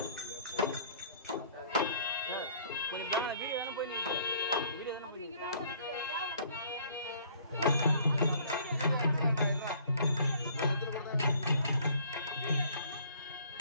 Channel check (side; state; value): both; inverted; correlation -0.57